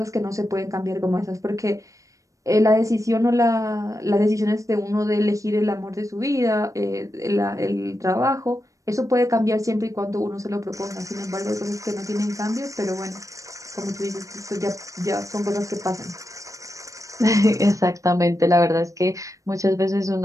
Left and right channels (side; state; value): left; late; 0.16 ms